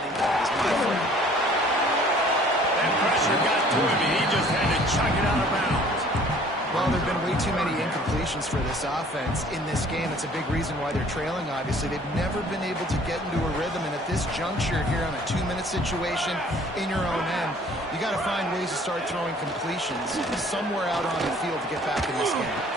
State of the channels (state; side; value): normal; both; correlation 0.54